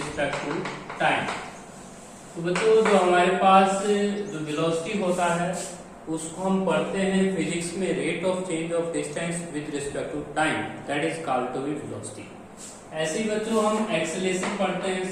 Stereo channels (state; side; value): identical; both; correlation 1.00